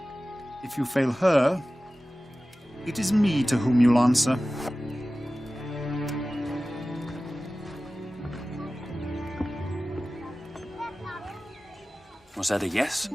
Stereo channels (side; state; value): both; normal; correlation 0.96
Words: If you fail her, it is me to whom you'll answer. Was that a yes?